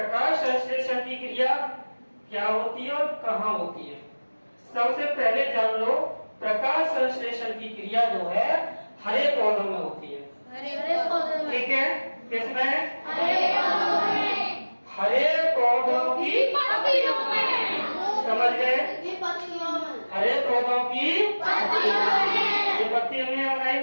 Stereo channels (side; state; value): both; inverted; correlation -1.00